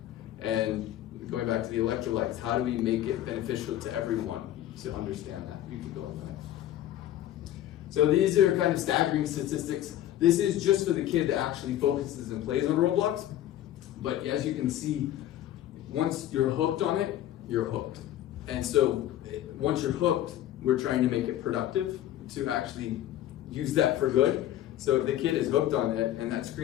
And going back to the electrolytes, how do we make it beneficial to everyone to understand that? You can go on the next. So these are kind of staggering statistics. This is just for the kid that actually focuses and plays on Roblox. But as you can see, once you're hooked on it, you're hooked. And so once you're hooked, we're trying to make it productive to actually use that for good. So if the kid is hooked on it and that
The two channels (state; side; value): quieter; right; 12.6 dB